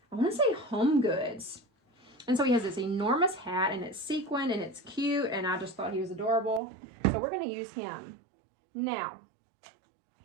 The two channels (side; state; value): left; drops out; at 6.6 s